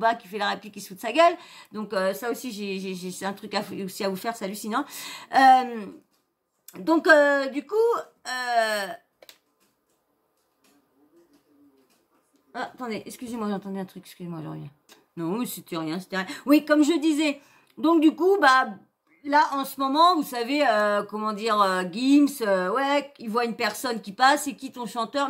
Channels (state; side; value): identical; both; correlation 1.00